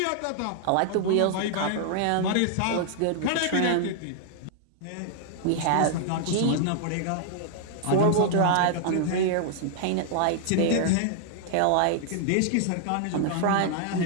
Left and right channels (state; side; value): different; both; correlation -0.01